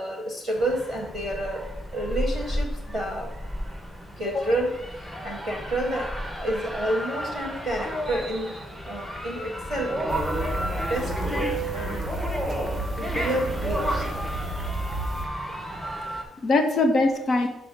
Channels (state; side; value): normal; both; correlation 0.75